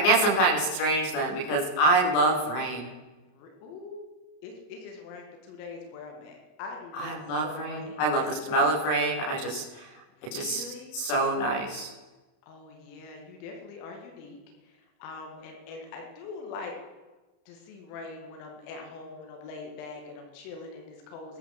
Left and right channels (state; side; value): late; right; 32 ms